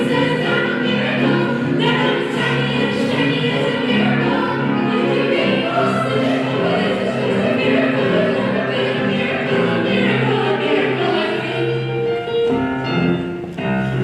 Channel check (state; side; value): identical; both; correlation 1.00